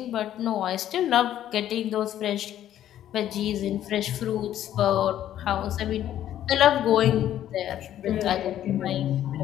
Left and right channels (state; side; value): quieter; right; 11.7 dB